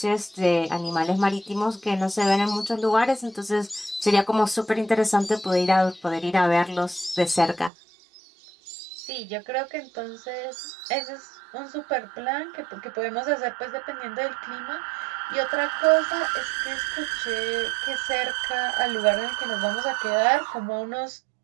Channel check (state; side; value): drops out; left; at 7.7 s